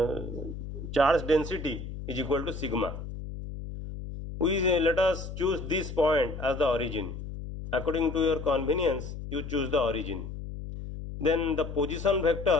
charge density is equal to sigma. Let us choose this point as the origin. According to your convenience, you choose the origin. Then the position vector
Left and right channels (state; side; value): noise; left; hum, 9 dB below the sound